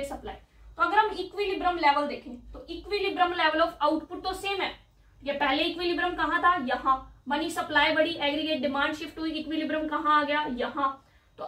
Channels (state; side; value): identical; both; correlation 1.00